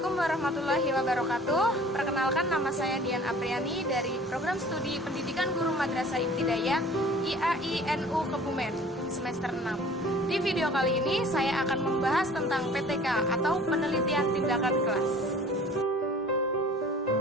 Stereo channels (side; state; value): both; normal; correlation 0.48